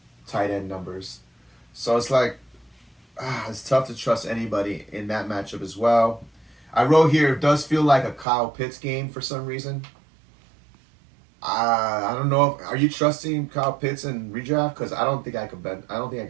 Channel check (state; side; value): drops out; left; at 8.2 s